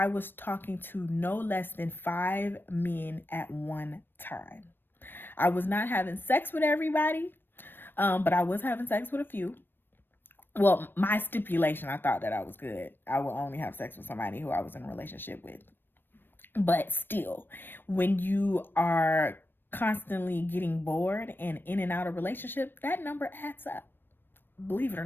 was talking to no less than 5 men at one time. I was not having sex with everybody, but I was having sex with a few. Well, my stipulation, I thought that I was good. I will only have sex with somebody who I was in a relationship with. But still, when you are constantly getting bored and in and out of relationship, that number adds up, believe it or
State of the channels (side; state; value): right; late; 0.096 ms